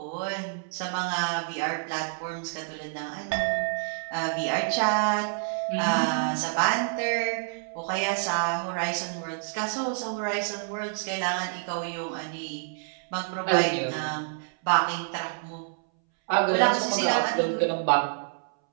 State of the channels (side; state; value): left; silent; 59 dB below the other